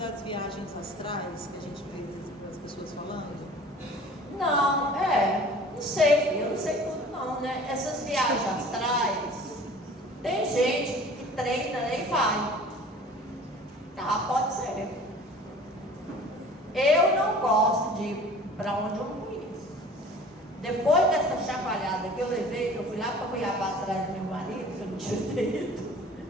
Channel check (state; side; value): normal; both; correlation 0.46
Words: viagens astrais que a gente vê as pessoas falando? Não, não sei, eu não sei tudo não, né? Essas viagens astrais, tem gente que treina, né, e vai. Tá, pode ser. Eu não gosto de ir para onde eu não conheço. Depois dessa chacoalhada que eu levei, que eu fui lá para Cuiabá atrás do meu marido, que eu não tinha ido.